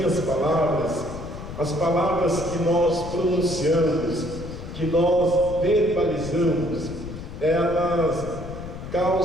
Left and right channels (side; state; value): left; noise; rumble, 10 dB below the sound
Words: palavras, as palavras que nós pronunciamos, que nós verbalizamos, elas